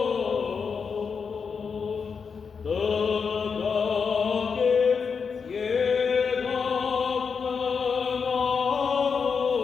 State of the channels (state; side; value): quieter; right; 5.8 dB